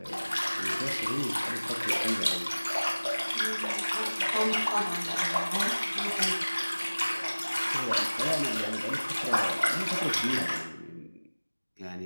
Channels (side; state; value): both; inverted; correlation -1.00